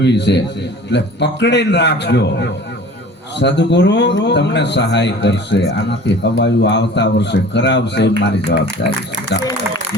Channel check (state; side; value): normal; both; correlation 0.44